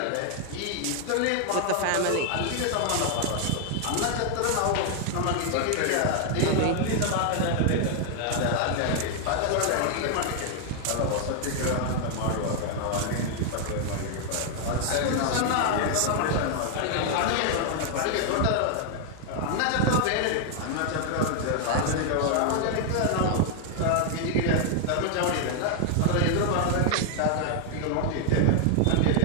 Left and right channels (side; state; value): both; different; correlation 0.00